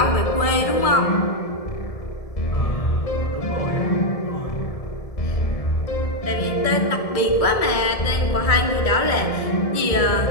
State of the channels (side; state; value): right; late; 1.7 ms